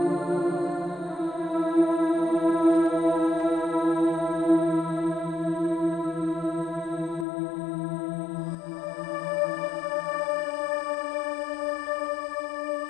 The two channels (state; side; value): drops out; right; at 7.2 s